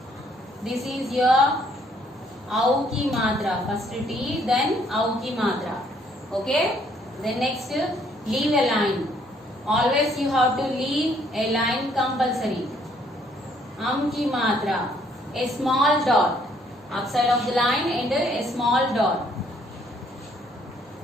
This is your Au की मात्रा. First T, then Au की मात्रा. Okay. Then next, leave a line. Always you have to leave a line compulsory. की मात्रा. A small dot outside of the line and a small dot.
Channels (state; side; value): normal; both; correlation 0.66